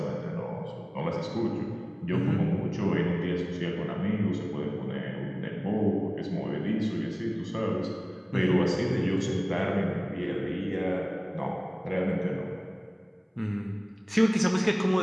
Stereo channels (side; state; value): both; identical; correlation 1.00